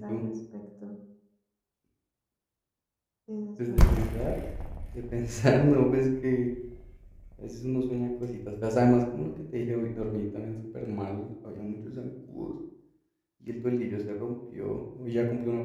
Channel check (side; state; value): both; identical; correlation 1.00